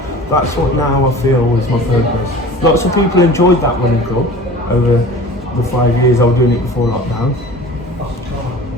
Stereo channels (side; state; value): both; normal; correlation 0.41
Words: what now I feel is my purpose. Lots of people enjoyed that winning club over the 5 years I was doing it before lockdown.